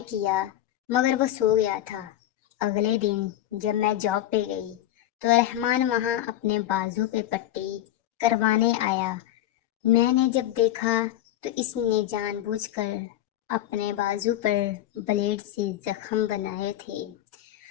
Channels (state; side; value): quieter; right; 13.3 dB